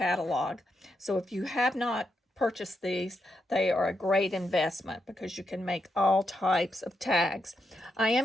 So if you have not purchased these, they are a great investment because you can make all types of tags. I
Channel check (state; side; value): normal; both; correlation 0.83